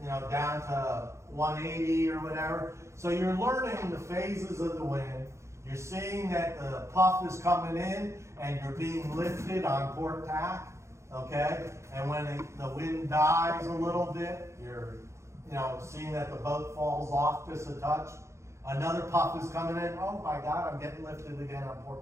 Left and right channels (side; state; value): left; late; 0.14 ms